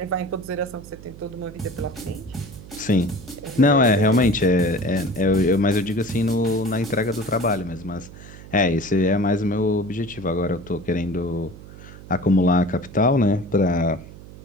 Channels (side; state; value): right; noise; hum, 17 dB below the sound